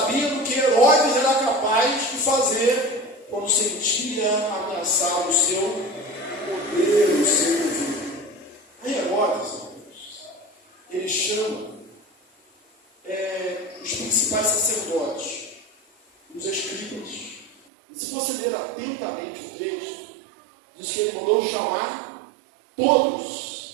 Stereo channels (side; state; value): left; drops out; at 17.6 s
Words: que Herodes era capaz de fazer quando sentia ameaçado o seu poder, o seu governo. Aí Herodes, ele chama os principais sacerdotes, os escribas. E se você ler atentamente o texto, diz que ele mandou chamar